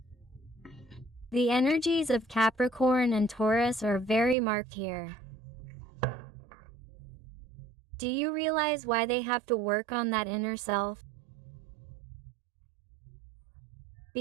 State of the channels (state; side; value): drops out; left; at 4.4 s